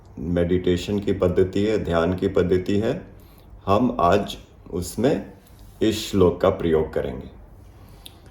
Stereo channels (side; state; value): both; identical; correlation 1.00